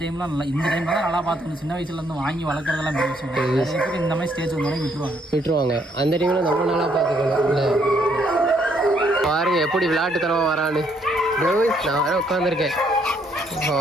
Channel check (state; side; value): normal; both; correlation 0.70